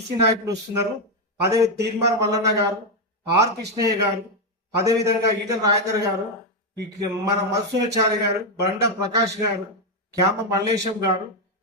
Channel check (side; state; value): both; normal; correlation 0.05